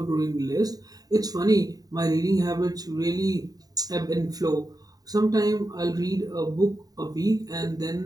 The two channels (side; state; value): left; late; 0.18 ms